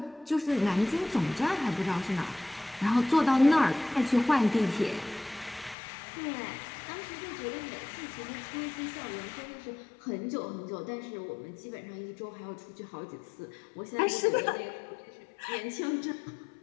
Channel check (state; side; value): drops out; right; at 5.8 s